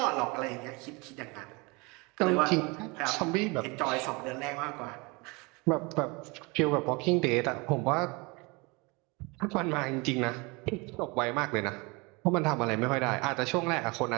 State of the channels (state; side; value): quieter; left; 27.2 dB